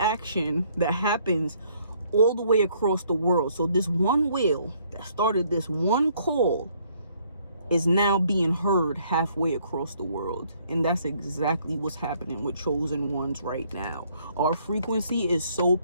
that happens all the way across the world. So this one whale that started this one call is now being heard halfway across the world. And that's exactly what's happening with chosen ones right now. Our frequency is so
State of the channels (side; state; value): both; inverted; correlation -0.65